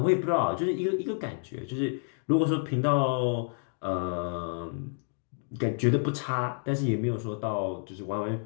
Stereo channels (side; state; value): right; silent; 58 dB below the other